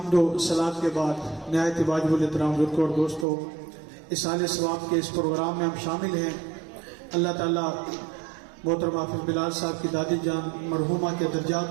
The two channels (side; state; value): left; drops out; at 3.2 s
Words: و صلات کے بعد نہایت واجب الاحترام بزرگوں اور دوستوں، اصالِ ثواب کے اس پروگرام میں ہم شامل ہیں. اللہ تعالیٰ محترم حافظ بلال صاحب کی دادی جان مرحومہ کے